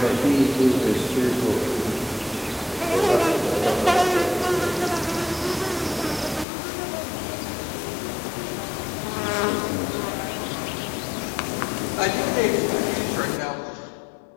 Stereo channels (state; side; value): drops out; right; at 6.5 s